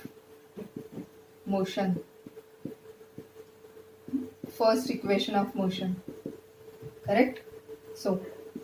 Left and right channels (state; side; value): identical; both; correlation 1.00